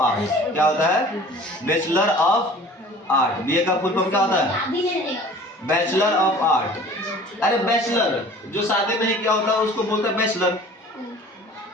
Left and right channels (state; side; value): normal; both; correlation 0.46